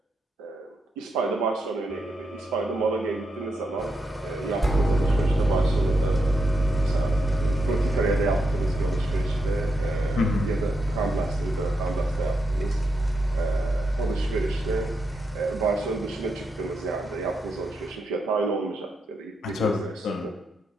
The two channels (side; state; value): both; normal; correlation 0.83